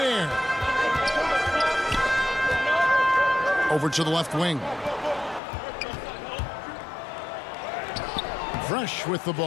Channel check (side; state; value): right; drops out; at 5.4 s